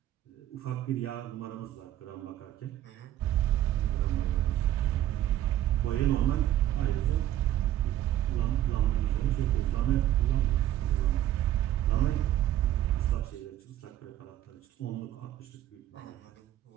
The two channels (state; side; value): quieter; left; 12.7 dB